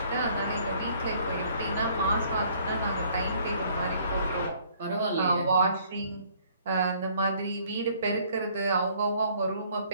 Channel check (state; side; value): inverted; both; correlation -0.60